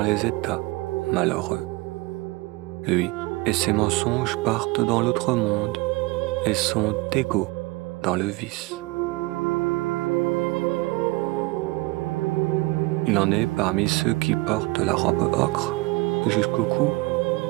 états malheureux. Lui et ses mensonges partent dans l'autre monde et sont égaux dans le vice. Il en est parmi ceux qui portent la robe ocre jusqu'au cou,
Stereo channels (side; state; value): left; quieter; 22.8 dB